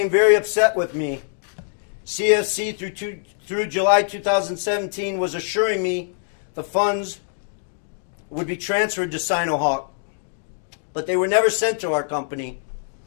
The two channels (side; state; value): right; silent; digital silence